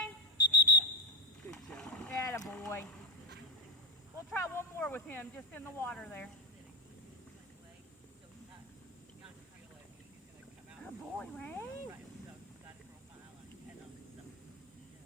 Good job. Yeah, boy. We'll try one more with him, just in the water there. Oh, boy, Rain. Right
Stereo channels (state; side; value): normal; both; correlation 0.11